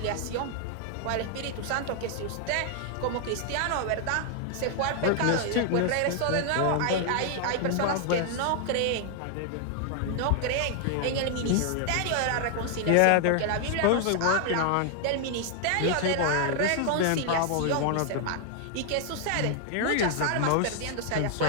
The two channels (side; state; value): both; different; correlation 0.00